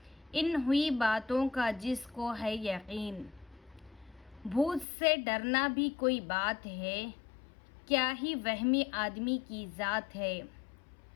ان ہوئی باتوں کا جس کو ہے یقین۔ بھوت سے ڈرنا بھی کوئی بات ہے، کیا ہی وہمی آدمی کی ذات ہے۔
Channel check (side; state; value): right; drops out; at 4.9 s